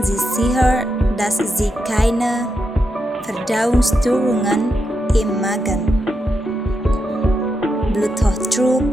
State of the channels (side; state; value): both; normal; correlation 0.85